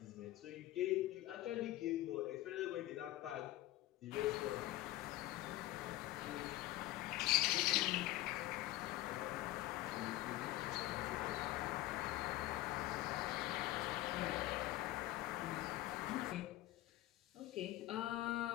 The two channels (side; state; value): right; quieter; 16.4 dB